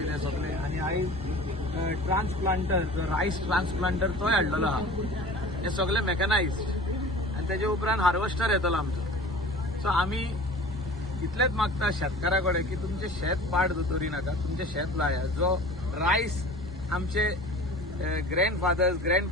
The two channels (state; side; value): normal; both; correlation 0.40